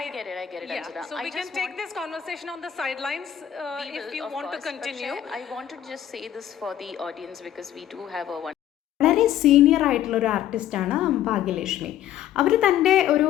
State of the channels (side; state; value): right; quieter; 11.1 dB